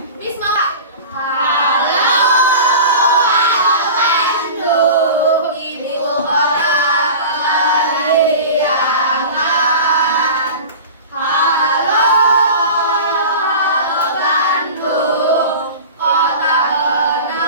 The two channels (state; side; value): inverted; both; correlation -0.34